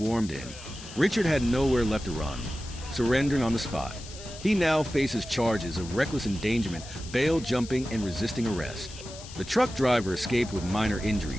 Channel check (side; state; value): left; noise; hiss, 15 dB below the sound